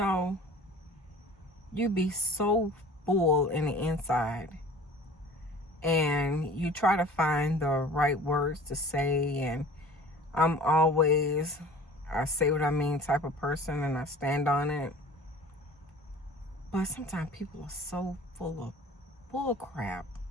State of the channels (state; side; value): normal; both; correlation 0.44